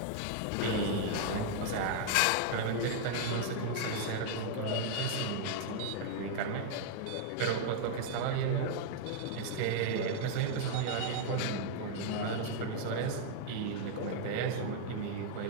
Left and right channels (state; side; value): different; both; correlation 0.00